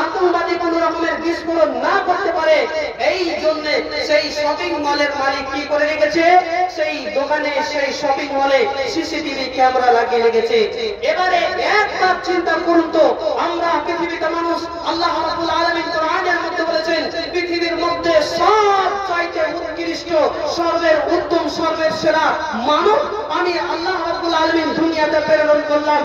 আতঙ্কবাদী কোন রকমের বিস্ফোরণ না করতে পারে, এই জন্য সেই শপিং মলের মালিক কি করে রেখেছে, সেই দোকানে সেই শপিং মলে সিসিটিভি ক্যামেরা লাগিয়ে রেখেছে। এবারে একবার চিন্তা করুন তো, আমরা পৃথিবীতে মানুষ, আল্লাহ রাব্বুল আলামিন কোরআনের মধ্যে বলেছেন পৃথিবীর মধ্যে সবচাইতে উৎকৃষ্ট, সর্বের উত্তম, সর্বের সেরা মানব আমি আল্লাহ রাব্বুল আলামিন দুনিয়াতে প্রেরণ করলাম।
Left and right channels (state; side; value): identical; both; correlation 1.00